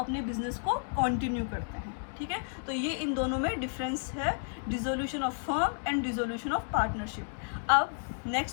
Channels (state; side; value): silent; right; digital silence